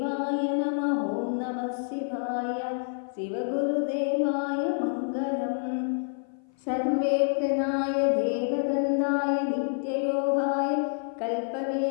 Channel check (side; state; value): right; silent; 56 dB below the other